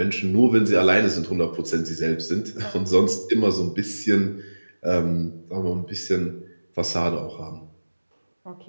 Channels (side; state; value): both; inverted; correlation -1.00